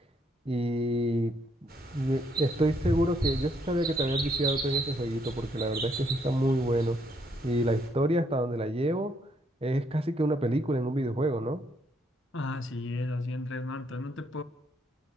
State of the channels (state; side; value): normal; both; correlation 0.72